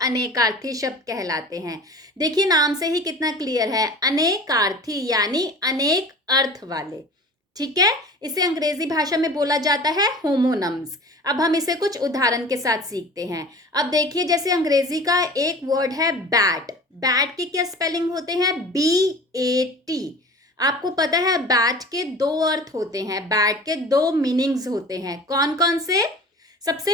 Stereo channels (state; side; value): normal; both; correlation 0.40